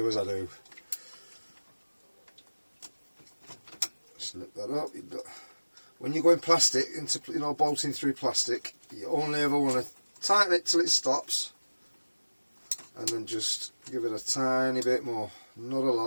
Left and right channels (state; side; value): inverted; both; correlation -1.00